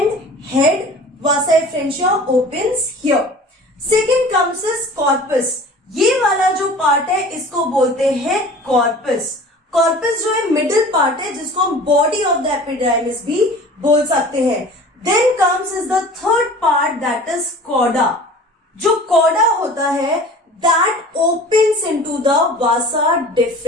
head Vasa efferentia opens here। Second comes is corpus। ये वाला जो पार्ट है इसको बोलते हैं कॉर्पस। कॉर्पस जो है मिडिल पार्ट है जिसको हम बॉडी ऑफ द एपिडाइमिस भी बोल सकते हैं। Then comes is the third part that is cauda. जो कॉडा होता है that opens into the vasa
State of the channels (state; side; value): normal; both; correlation 0.42